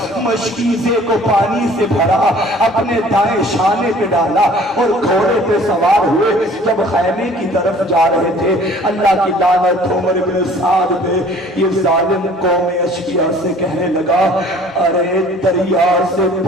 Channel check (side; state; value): both; normal; correlation 0.52